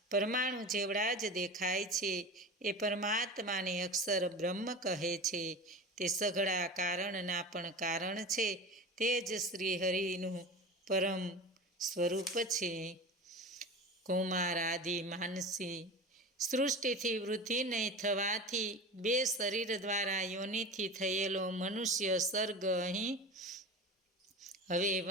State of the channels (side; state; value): both; normal; correlation 0.31